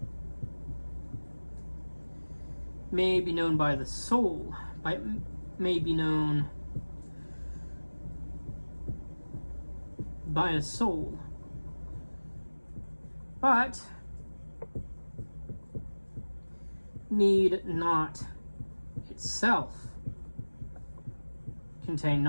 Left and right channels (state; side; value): inverted; both; correlation -1.00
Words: may be known by the soul, may be known by a soul, but need not itself contain